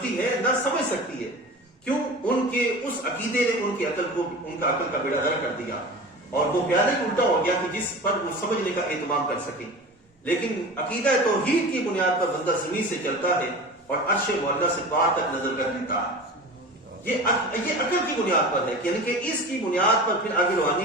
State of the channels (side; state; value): both; normal; correlation 0.34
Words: ہے، نہ سمجھ سکتی ہے. کیوں؟ ان کے اس عقیدے نے ان کی عقل کو، ان کا عقل کا بیڑا غرق کر دیا، اور وہ پیادہ ہی الٹا ہو گیا کہ جس پر وہ سمجھنے کا اہتمام کر سکیں. لیکن عقیدہ توحید کی بنیاد پر بندہ زمین سے چلتا ہے اور عرش معلیٰ سے پار تک نظر کر لیتا ہے. یہ عقل کی بنیاد پر ہے، یعنی کہ اس کی بنیاد پر پھر آگے روحانی